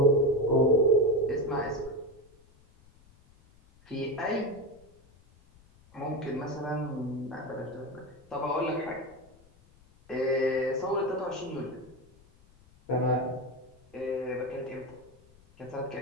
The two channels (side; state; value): left; noise; rumble, 28 dB below the sound